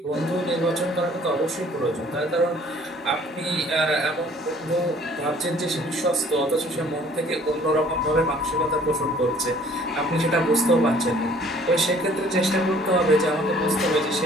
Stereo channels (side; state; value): both; normal; correlation 0.56